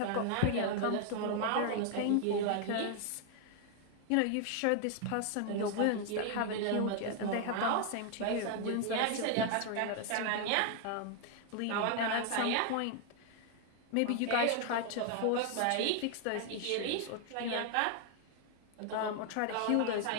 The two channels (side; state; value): both; different; correlation 0.00